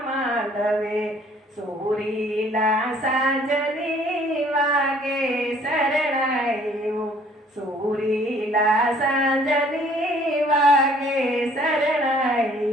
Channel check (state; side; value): normal; both; correlation 0.58